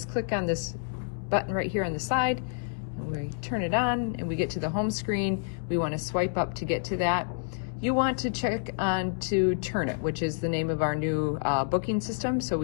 click on this button right here on the side, and we turn it on, and we get to the home screen. We want to swipe up to get to that. You want to check on to Turnit, which is the name of our new booking system. So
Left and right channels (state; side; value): silent; right; digital silence